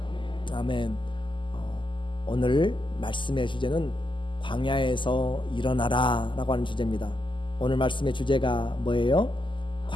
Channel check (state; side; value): late; right; 0.24 ms